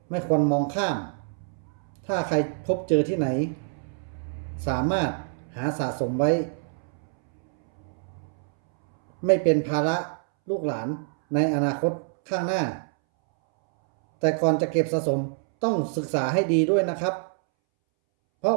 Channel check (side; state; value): left; silent; 61 dB below the other